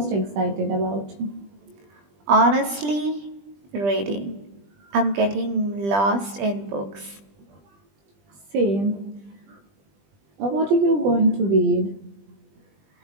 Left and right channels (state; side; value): late; left; 20 ms